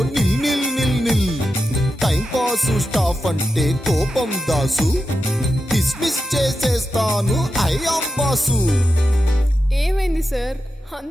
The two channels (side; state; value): both; normal; correlation 0.89